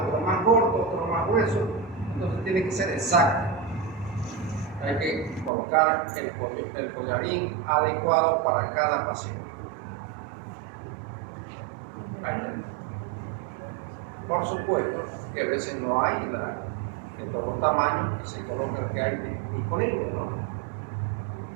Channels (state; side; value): drops out; left; at 5.5 s